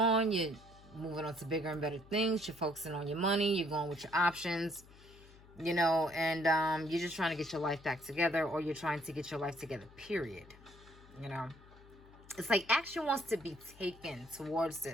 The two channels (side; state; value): left; noise; hum, 22 dB below the sound